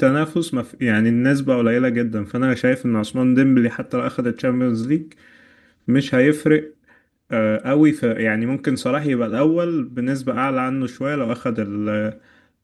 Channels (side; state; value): both; identical; correlation 1.00